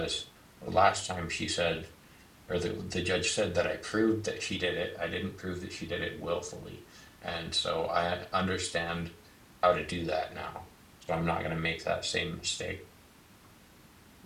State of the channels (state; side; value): identical; both; correlation 1.00